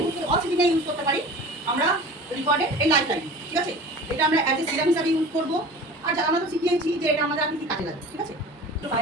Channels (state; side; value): normal; both; correlation 0.39